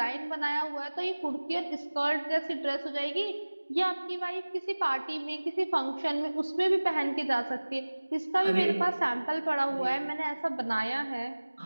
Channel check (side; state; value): both; inverted; correlation -1.00